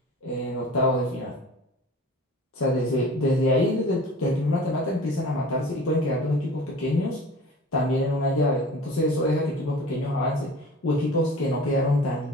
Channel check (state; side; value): normal; both; correlation 0.41